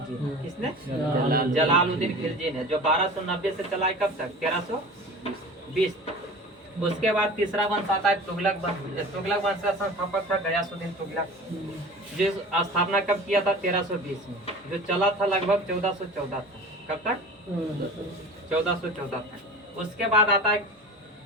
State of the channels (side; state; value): both; normal; correlation 0.37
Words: ने। किसने? जलालुद्दीन खिलजी ने, जो 1290 से चला है कब तक? 1320 तक। उसके बाद तीसरा वंश आता है तुगलक वंश। तुगलक वंश का संस्थापक था गयासुद्दीन तुगलक, जिस स्थापना कब किया था? 1320 में, जो चला था लगभग 1414 तक। कब तक? 1414 तक। उसके बाद आता है